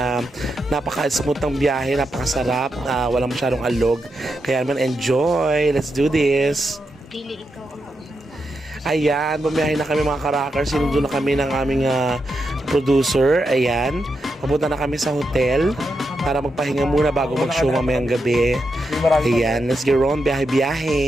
napaka-smooth ng biyahe, napakasarap, walang masyadong alog. Kaya naman enjoy. Let's do this. Dili ikaw ang Ayan, bumiyahe na kami mga ka-rockers. Sinundo na kami ng aming producer. Ayan, papunta na kami sa hotel para magpahinga muna bago mag-show mamayang gabi. Ayan, let's get on,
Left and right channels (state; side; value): normal; both; correlation 0.85